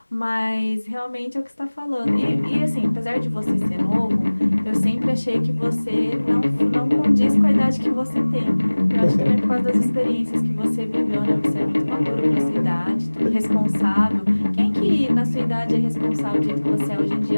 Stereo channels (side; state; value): both; inverted; correlation -1.00